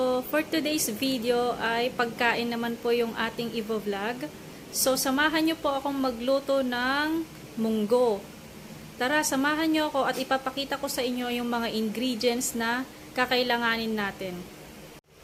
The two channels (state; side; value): identical; both; correlation 1.00